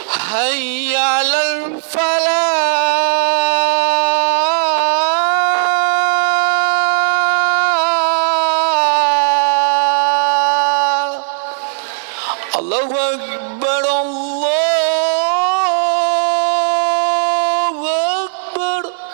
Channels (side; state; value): left; silent; digital silence